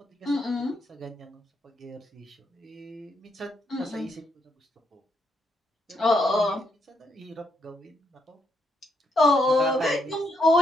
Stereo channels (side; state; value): both; normal; correlation 0.78